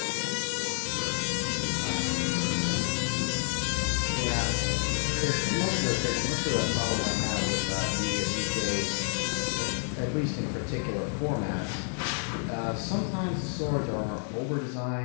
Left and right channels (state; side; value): silent; right; 57 dB below the other